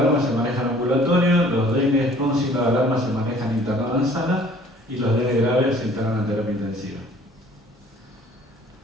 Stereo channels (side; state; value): both; normal; correlation 0.54